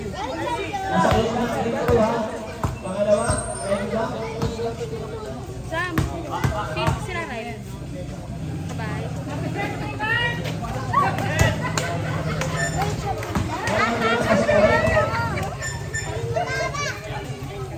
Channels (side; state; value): both; identical; correlation 1.00